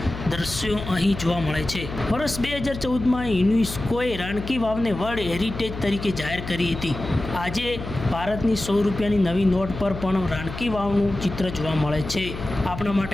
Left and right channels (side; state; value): left; noise; hum, 9 dB below the sound